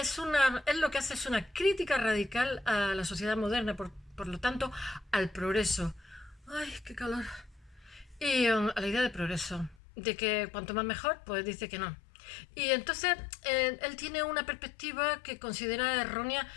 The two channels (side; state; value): right; drops out; at 9.8 s